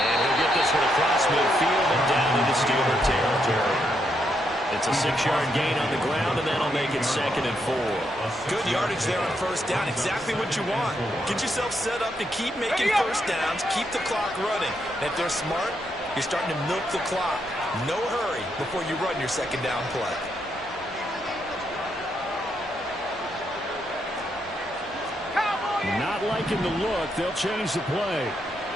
he'll get this one across midfield and down into Steeler territory. It's a 6-yard gain on the ground, and that'll make it 2nd and 4. Good yardage there on first down. Exactly what you want. Get yourself set up to keep making first downs, keep the clock running. And if they're smart, you're starting to milk the clock. No hurry before you run your second down play. Not liking the look. They'll change the play.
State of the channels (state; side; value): normal; both; correlation 0.79